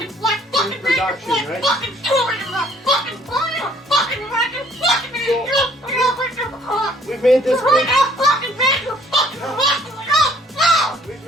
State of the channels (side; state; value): both; normal; correlation 0.60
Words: production, right? So, we've made this cage. We've